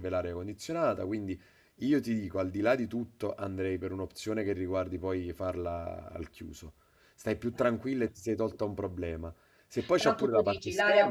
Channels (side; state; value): both; identical; correlation 1.00